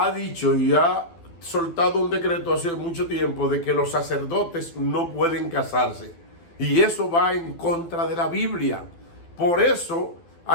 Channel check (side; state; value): right; late; 12 ms